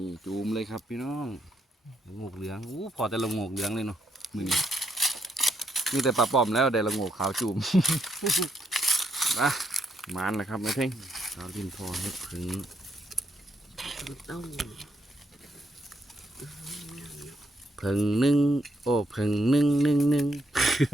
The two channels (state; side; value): normal; both; correlation 0.77